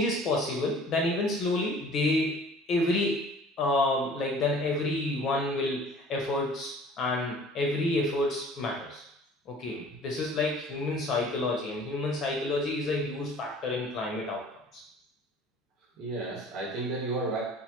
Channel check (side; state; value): both; normal; correlation 0.49